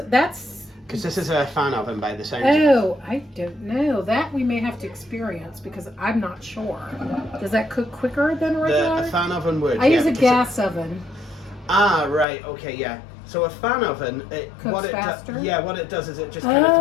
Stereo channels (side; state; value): right; drops out; at 12.2 s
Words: Because this is a fan oven by the sound. Oh, I don't know. That we may have to experience because I'm not sure. Does that cook quicker than regular? A fan oven would. I use a gas oven. Ah, right. Okay, yeah. So a fan oven, what it does is it just kind of